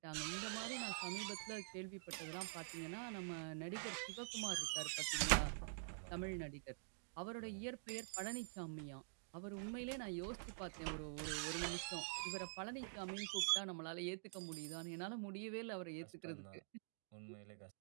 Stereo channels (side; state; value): left; silent; digital silence